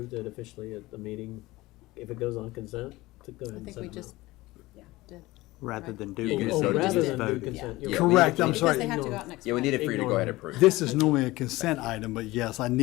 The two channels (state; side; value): quieter; right; 19.5 dB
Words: it officially at the meeting, if it goes on consent, to go ahead I and think send we them just, out. yeah, did. Rather than do Oh, consent, rather just than do vote. consent. Yeah. you're Correct, I'm Because sorry. they have to go out next Yeah, we Friday. needed for you to go ahead and approve. This is normally a consent item, but yes, I